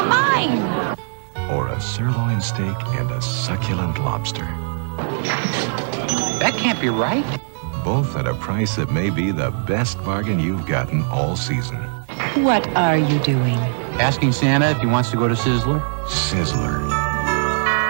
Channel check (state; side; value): silent; left; 65 dB below the other